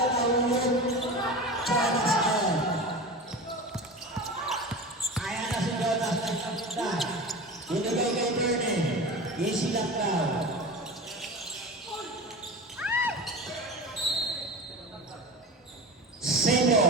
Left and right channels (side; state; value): both; normal; correlation 0.31